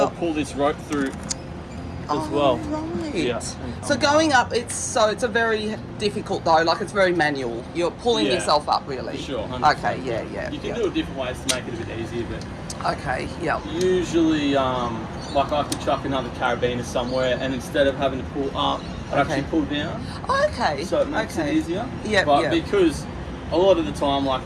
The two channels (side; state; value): both; identical; correlation 1.00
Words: pull this rope through as well. Right. Yeah. So going up, it's a very difficult though. Like it's very manual. You're pulling yourself up, really. For sure. 100%. Okay. Yeah. You can do it different ways to make it a bit easier, but okay. Yeah. Usually, like I could chuck another carabiner somewhere, and instead of having to pull up, I actually pull down. Okay. So it makes it easier. Yeah. But because a lot of the time,